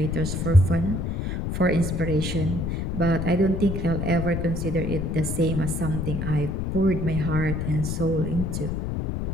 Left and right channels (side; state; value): left; noise; rumble, 2 dB below the sound